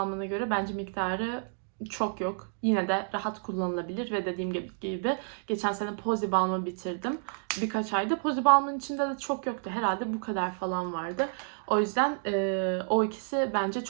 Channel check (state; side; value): silent; left; digital silence